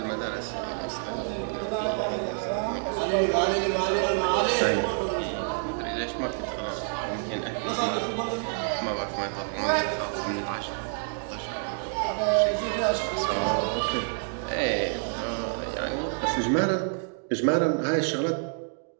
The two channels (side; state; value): left; silent; 59 dB below the other